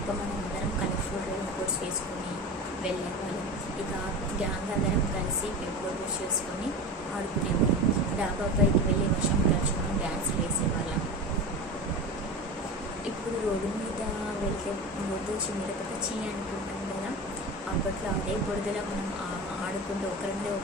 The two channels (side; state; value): both; normal; correlation 0.27